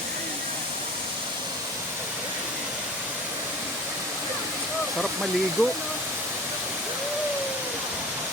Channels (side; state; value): both; normal; correlation 0.39